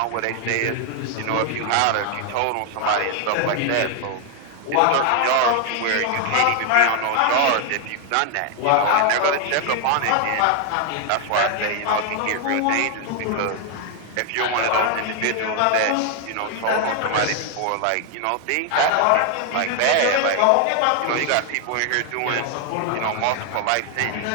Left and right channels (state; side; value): different; both; correlation 0.00